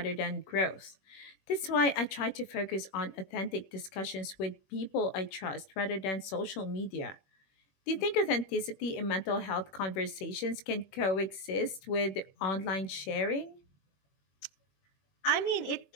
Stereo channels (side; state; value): right; late; 21 ms